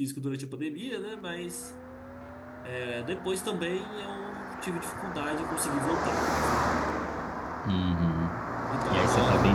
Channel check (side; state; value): both; identical; correlation 1.00